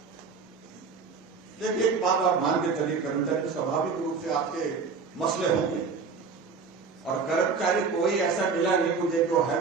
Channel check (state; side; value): quieter; left; 5.0 dB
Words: देखिए, एक बात आप मान के चलिए, कर्मचारी स्वाभाविक रूप से आपके मसले होंगे, और कर्मचारी कोई ऐसा मिला नहीं मुझे जो